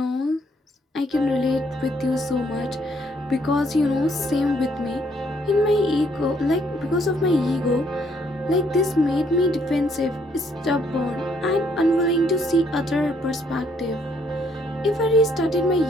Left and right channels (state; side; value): normal; both; correlation 0.68